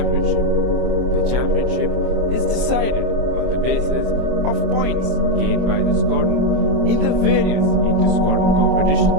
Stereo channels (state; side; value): late; left; 25 ms